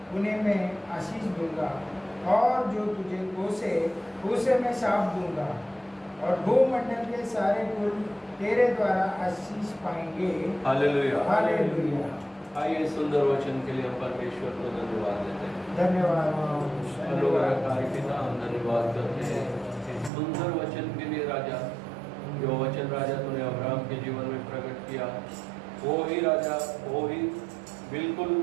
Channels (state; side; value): drops out; left; at 20.1 s